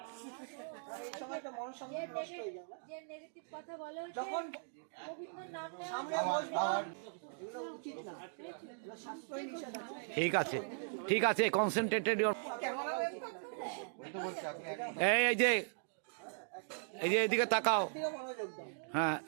এই সময়টা মনঃসংযোগ নষ্ট হয়ে যায় না? যে নেগেটিভ কথা বলে ওই যে যখন গোবিন্দর নাম নেওয়া সামনে বসবে এগুলো উচিত না, এগুলো শাস্ত্রই নিষেধ আছে। ঠিক আছে কনসেন্ট্রেটেড ইওর ওই তো বলছি আপনি এই যে এদিকে তাকাও। দিকে মনোযোগ দাও। হ্যাঁ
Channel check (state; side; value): silent; left; digital silence